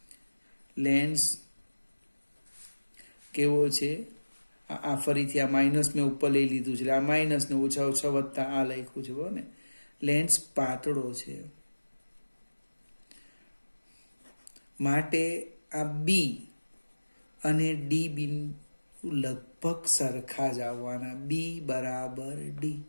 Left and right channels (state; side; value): inverted; both; correlation -1.00